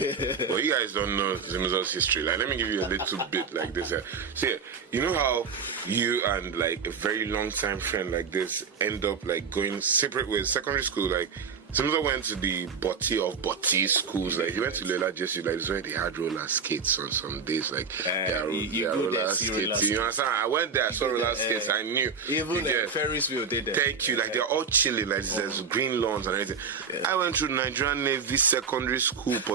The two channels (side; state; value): left; quieter; 5.6 dB